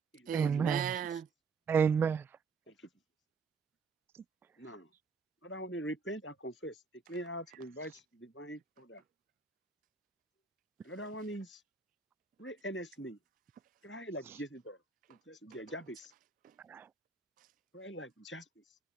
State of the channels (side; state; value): left; quieter; 5.2 dB